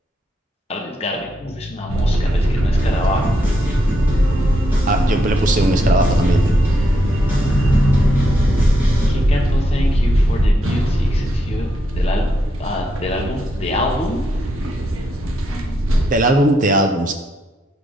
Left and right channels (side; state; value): both; normal; correlation 0.80